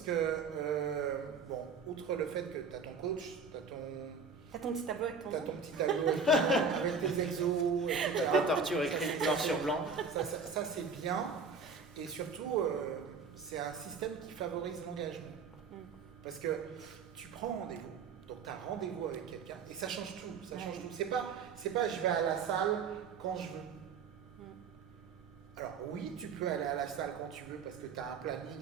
que, bon, outre le fait que tu as ton coach, tu as ton petit tableau avec ton petit tableau avec tes exos, etc. Ta torture écrite noir sur blanc. Ça c'est bien. Et surtout, c'est un système qui favorise l'engagement. Parce que tu prends rendez-vous, Donc tu as rendez-vous avec quelqu'un et ça change tout. Ça change tout. C'est pas je vais à la salle quand je veux. Alors oui, tu peux aller à la salle quand tu veux parce que tu as un planning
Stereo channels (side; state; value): left; quieter; 5.0 dB